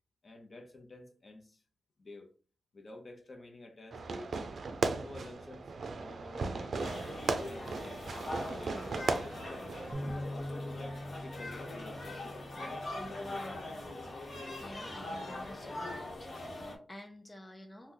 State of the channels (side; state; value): both; normal; correlation 0.89